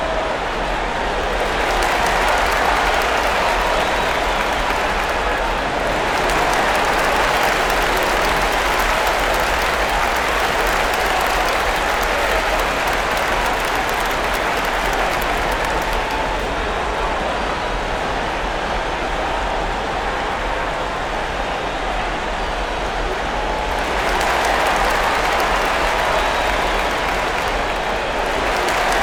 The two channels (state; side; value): identical; both; correlation 1.00